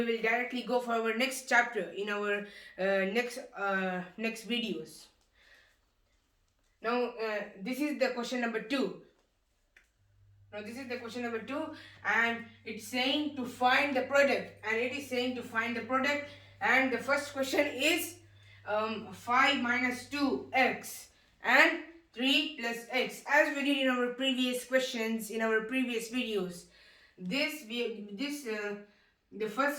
will directly go for our next chapter in our next videos. Now this is the question number 2. Now this is the question number 2, and it's saying to find the product, and the first question is 5 minus 2x and 3 plus x, as we did in our previous questions, in our previous videos. The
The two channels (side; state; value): both; identical; correlation 1.00